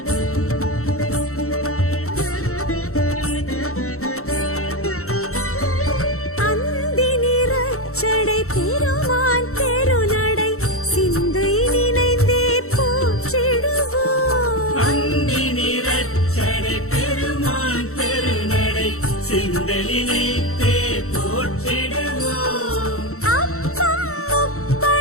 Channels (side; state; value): right; late; 0.63 ms